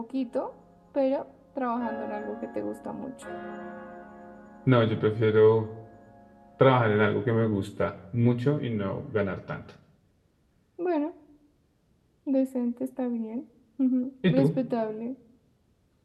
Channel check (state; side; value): identical; both; correlation 1.00